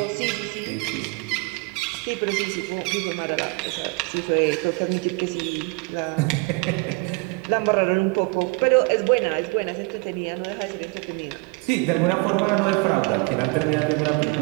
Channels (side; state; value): left; quieter; 28.3 dB